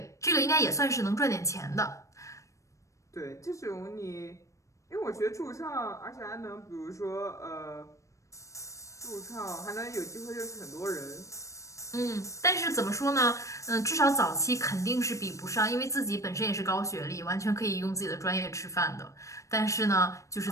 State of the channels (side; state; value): right; late; 0.15 ms